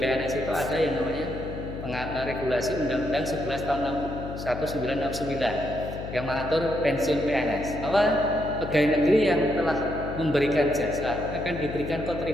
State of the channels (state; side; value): noise; left; hum, 8 dB below the sound